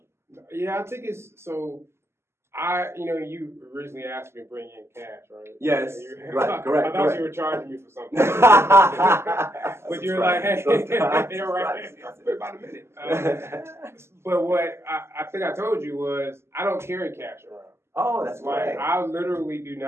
Yeah, I think it's so. You originally asked me to bring in cash, right? Yes, right, correct. I thought you were charging me for something. But you're like, hey, you're right. About a minute. But what I think I told you was, I don't carry cash around. Oh, that's right. I literally do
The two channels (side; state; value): left; late; 0.12 ms